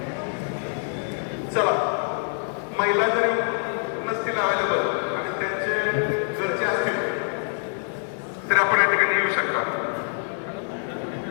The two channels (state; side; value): silent; right; 62 dB below the other